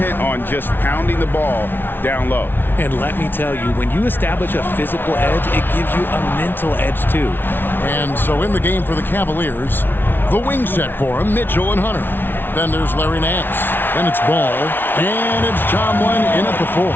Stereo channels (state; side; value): late; right; 0.10 ms